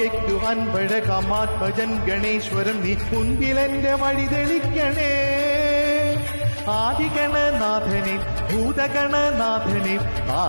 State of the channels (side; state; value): both; inverted; correlation -1.00